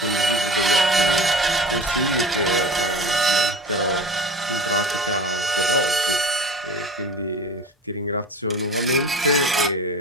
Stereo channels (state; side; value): normal; both; correlation 0.35